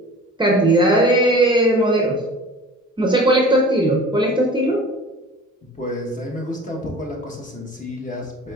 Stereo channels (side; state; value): both; normal; correlation 0.42